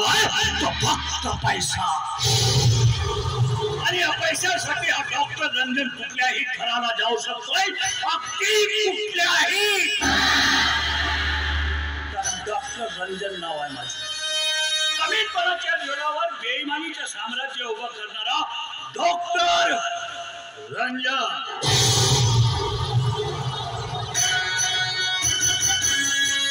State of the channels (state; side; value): identical; both; correlation 1.00